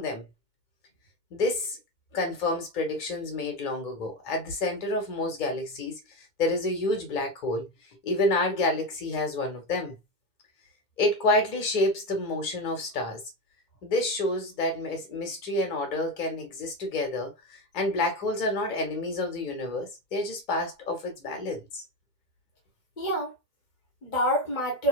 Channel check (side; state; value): right; late; 2.1 ms